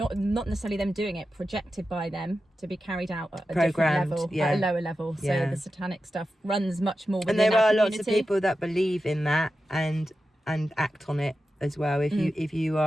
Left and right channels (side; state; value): both; normal; correlation 0.92